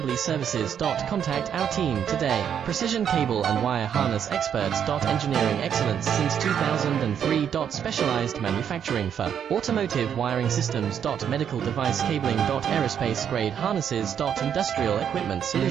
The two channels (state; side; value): quieter; left; 8.5 dB